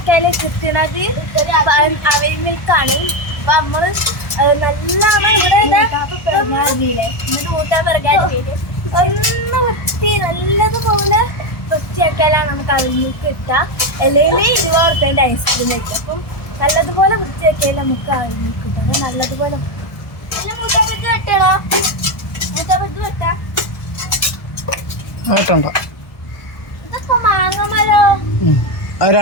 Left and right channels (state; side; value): late; right; 1.2 ms